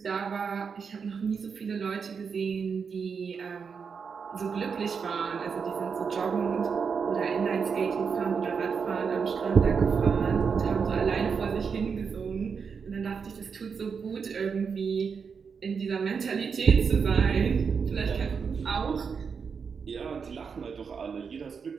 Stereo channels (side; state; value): left; quieter; 6.0 dB